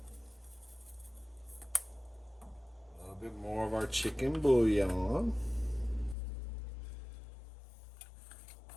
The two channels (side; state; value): right; drops out; at 6.2 s